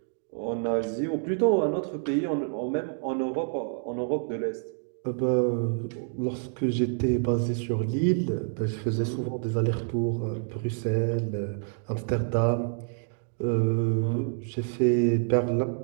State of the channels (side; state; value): left; silent; 60 dB below the other